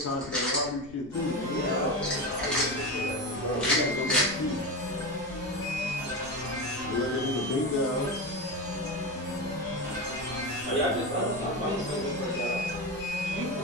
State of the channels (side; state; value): left; noise; rumble, 20 dB below the sound